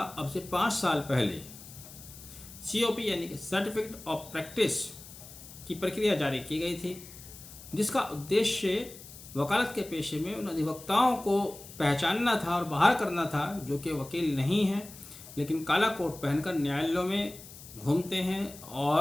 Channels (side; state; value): left; noise; hiss, 17 dB below the sound